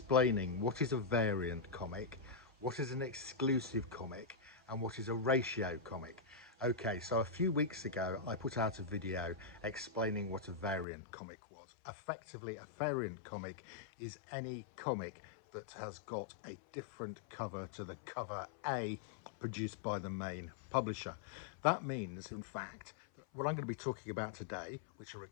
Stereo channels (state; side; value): drops out; right; at 10.9 s